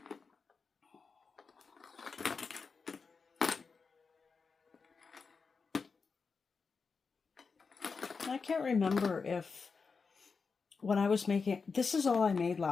I can't remember if when I was making, this is all I made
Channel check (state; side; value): quieter; right; 5.0 dB